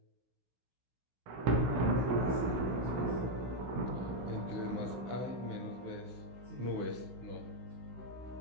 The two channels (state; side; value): late; left; 16 ms